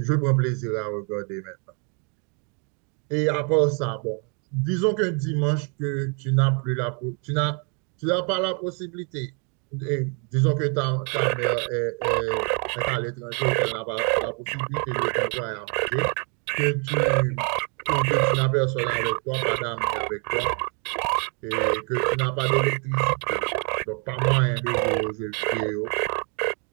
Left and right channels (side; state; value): left; quieter; 37.4 dB